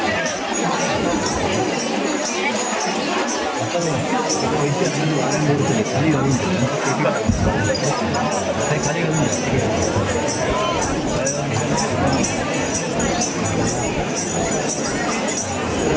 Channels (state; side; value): identical; both; correlation 1.00